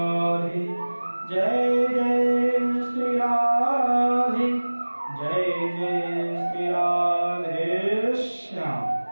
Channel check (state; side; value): inverted; both; correlation -1.00